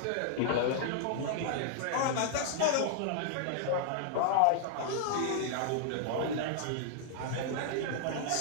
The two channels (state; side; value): different; both; correlation 0.00